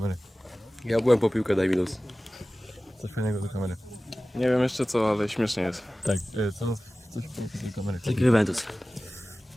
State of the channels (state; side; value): normal; both; correlation 0.97